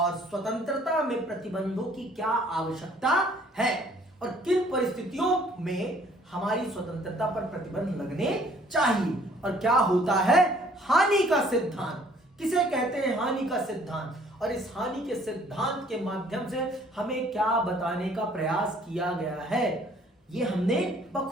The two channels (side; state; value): both; normal; correlation 0.58